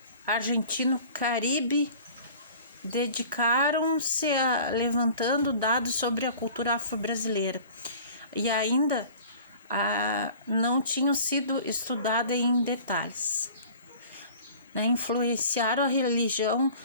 argentino Caribe, dedicaram-se a levantando dados sobre a cultura afro-brasileira e ainda não tinham sido estudadas em detalhes. né,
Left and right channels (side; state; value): both; inverted; correlation -0.45